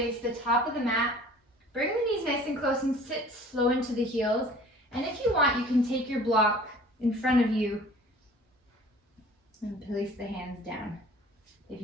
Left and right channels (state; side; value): normal; both; correlation 0.48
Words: the top of the mat. Bring the knees nice and close and sit slow into the heels. And if you want, you can take your block in front of you and place the hands down. If